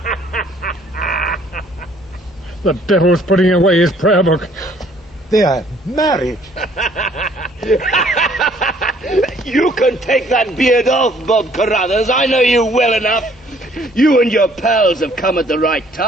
The devil's putting away his prayer book. They are married. You can take that beard off, Bob Carruthers. I know you well enough. You and your pals have come at the right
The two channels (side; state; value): both; normal; correlation 0.61